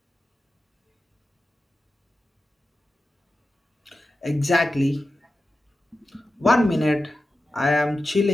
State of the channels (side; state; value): both; normal; correlation 0.93